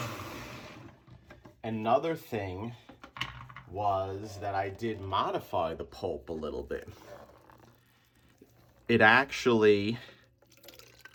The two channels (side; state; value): both; identical; correlation 1.00